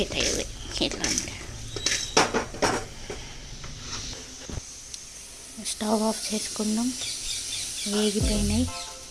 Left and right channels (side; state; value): both; identical; correlation 1.00